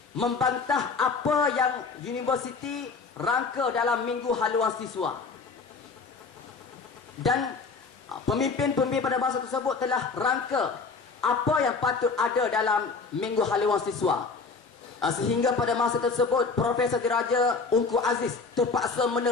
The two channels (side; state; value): right; quieter; 4.6 dB